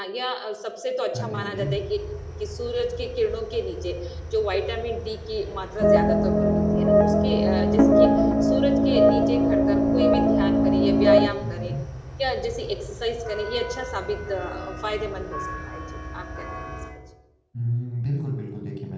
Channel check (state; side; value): identical; both; correlation 1.00